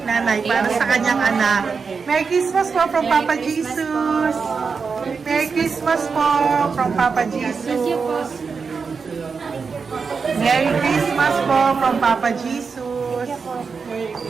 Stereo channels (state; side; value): quieter; left; 5.2 dB